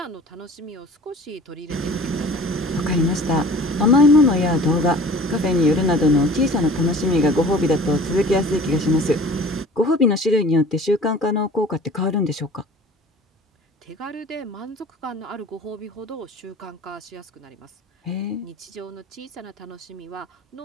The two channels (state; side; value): normal; both; correlation 0.45